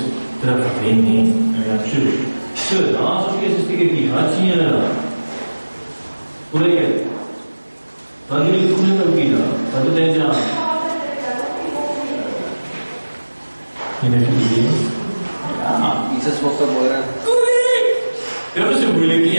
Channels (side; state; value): both; inverted; correlation -1.00